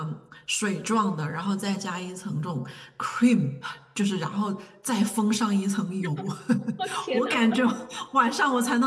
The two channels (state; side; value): identical; both; correlation 1.00